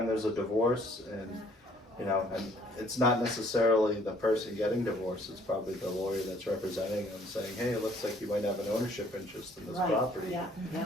there's a divorce and, you know, and it's not necessarily the person getting divorced, it's probably the lawyer that's representing them saying, hey, it looks like you might have an ownership interest in this Right, property. yeah, yeah,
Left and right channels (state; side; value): normal; both; correlation 0.61